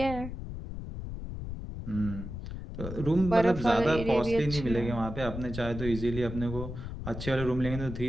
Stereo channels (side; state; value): left; noise; rumble, 8 dB below the sound